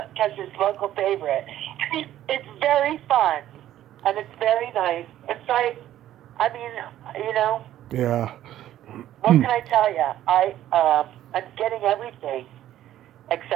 Kezios' local favorite. It's very fun, and it's very nice. It's like, I mean, you know. Yeah. What can I tell you? I'm getting everything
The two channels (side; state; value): left; quieter; 12.7 dB